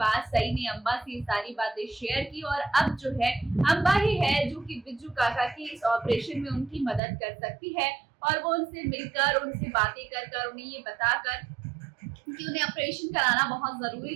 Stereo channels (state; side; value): drops out; left; at 7.0 s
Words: सई ने अम्बा से सारी बातें शेयर की। और अब जो है अम्बा ही है जो कि बिज्जू काका की इस ऑपरेशन में उनकी मदद कर सकती है, और वो उनसे मिलकर उनसे बातें कर उन्हें ये बताकर कि उन्हें ऑपरेशन कराना बहुत